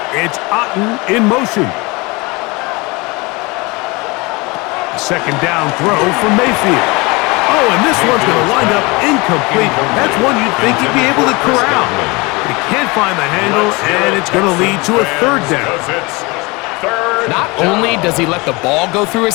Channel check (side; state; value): right; quieter; 25.6 dB